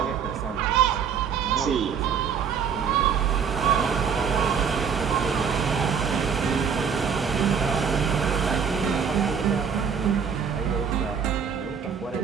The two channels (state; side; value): quieter; left; 6.9 dB